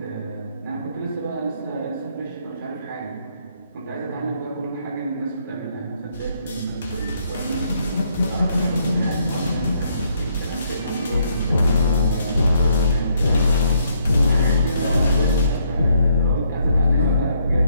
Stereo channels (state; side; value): inverted; both; correlation -0.71